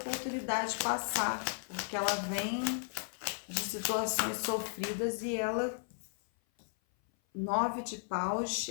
passar, porque ela vem de situações sofridas e ela, 9 de paus,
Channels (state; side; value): silent; right; 54 dB below the other